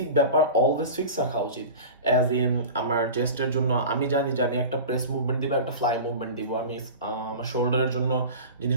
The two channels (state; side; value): inverted; both; correlation -0.33